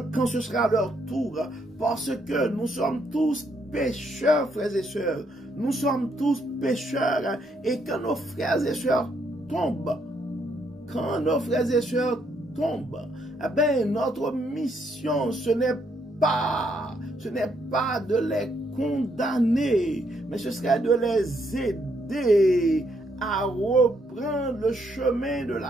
quand ce sera leur tour, parce que nous sommes tous pécheurs, frères et sœurs. Nous sommes tous pécheurs, et quand nos frères et sœurs tombent, eh bien, notre mission, ce n'est pas de les condamner, mais ce serait de les aider à reprendre le chemin de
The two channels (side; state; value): both; normal; correlation 0.73